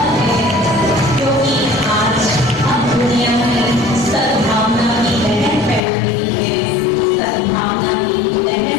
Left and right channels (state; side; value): drops out; right; at 5.8 s